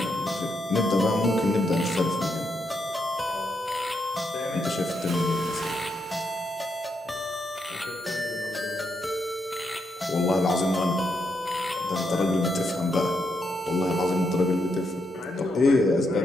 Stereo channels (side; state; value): both; normal; correlation 0.80